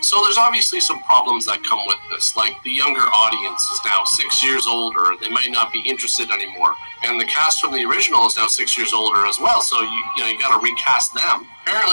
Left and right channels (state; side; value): inverted; both; correlation -1.00